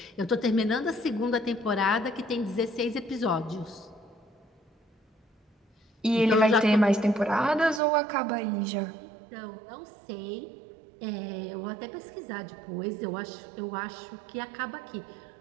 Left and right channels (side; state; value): left; drops out; at 7.8 s